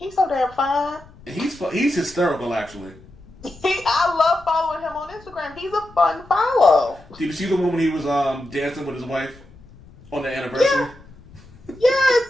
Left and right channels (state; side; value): noise; left; rumble, 23 dB below the sound